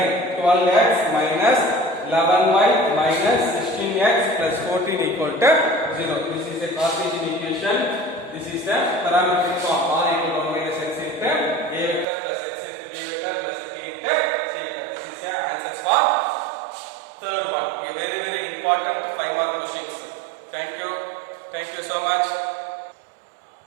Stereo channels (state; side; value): drops out; left; at 12.1 s